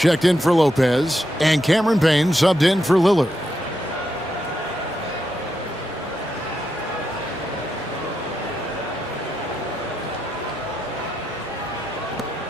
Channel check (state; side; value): normal; both; correlation 0.84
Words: in for Lopez. And Cameron Payne subbed in for Lillard.